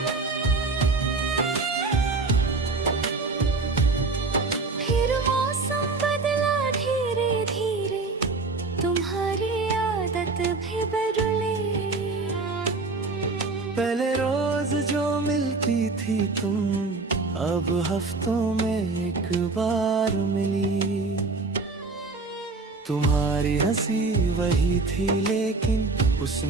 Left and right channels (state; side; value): quieter; left; 3.8 dB